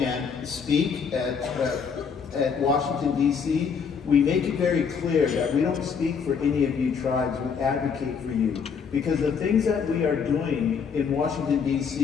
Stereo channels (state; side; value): quieter; right; 6.3 dB